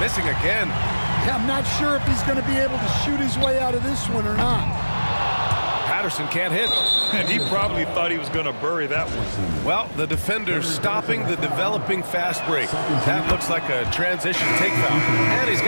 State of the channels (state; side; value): inverted; both; correlation -1.00